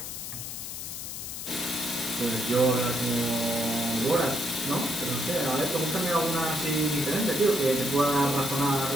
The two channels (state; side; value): noise; left; hiss, 7 dB below the sound